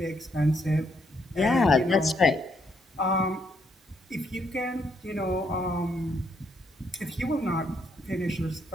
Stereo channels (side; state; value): both; normal; correlation 0.74